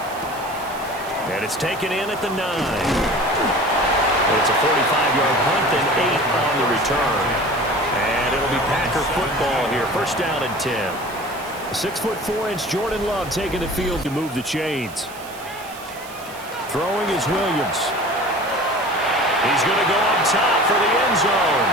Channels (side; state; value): right; noise; hiss, 18 dB below the sound